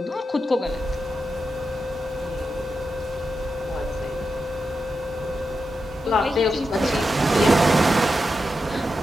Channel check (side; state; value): both; normal; correlation 0.88